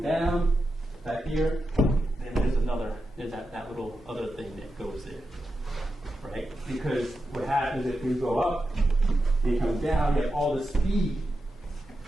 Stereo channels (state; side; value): normal; both; correlation 0.89